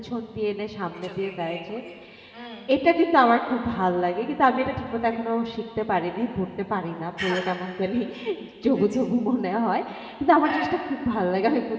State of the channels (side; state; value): both; identical; correlation 1.00